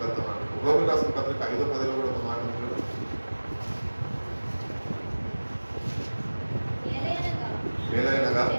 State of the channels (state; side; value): inverted; both; correlation -1.00